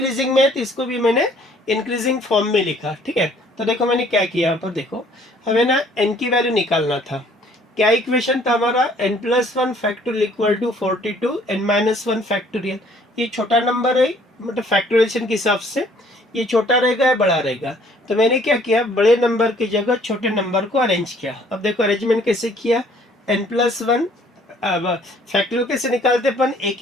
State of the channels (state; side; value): normal; both; correlation 0.59